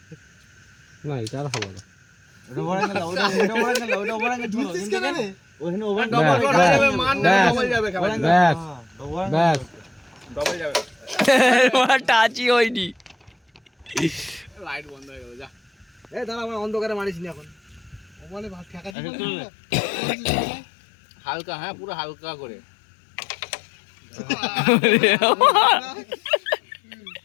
না এটা আর হবে না। ওটা ওভার অ্যাঙ্গেল, ওটা ওভার অ্যাঙ্গেল, ওটা ওভার অ্যাঙ্গেল ছিল। বুঝছিস কেন রে? ওখানে ওভার ব্যাস, ডবল ব্যাস, যাবে, মান না ব্যাস, ডবল যাবে, ব্যাস, ব্যাস। ডবল যাবে। টাচই হয়নি। লাইট বন্ধ হয়ে গেল, যা এই দাঁড়া, আমার অন্ধকারে মারিস নি এখন। ও বলে ভাত ঠেকা দিবি না হালকা, হ্যাঁ পুরো হালকা করে।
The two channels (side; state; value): right; drops out; at 18.9 s